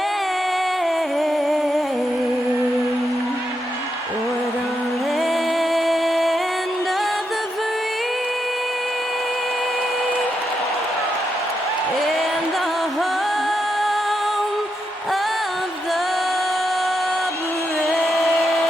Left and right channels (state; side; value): normal; both; correlation 0.83